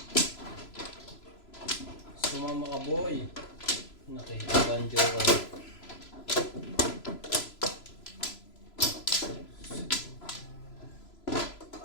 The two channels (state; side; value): late; right; 3.0 ms